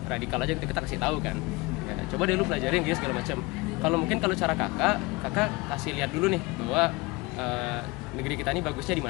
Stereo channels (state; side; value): quieter; right; 23.9 dB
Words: radikal aja kita kasih tahu kan. Ya, coba deh lu pelajarin gitu segala macam. Kalau cara kakak kasih lihat dulu nih bahwa negeri kita ini bagusnya di